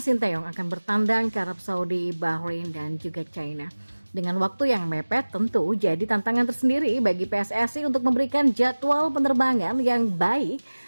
akan bertandang ke Arab Saudi, Bahrain, dan juga China. Dengan waktu yang mepet tentu jadi tantangan tersendiri bagi PSSI untuk memberikan jadwal penerbangan yang baik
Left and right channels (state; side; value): inverted; both; correlation -1.00